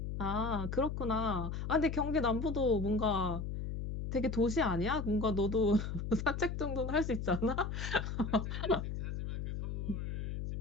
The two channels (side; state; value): left; noise; hum, 4 dB below the sound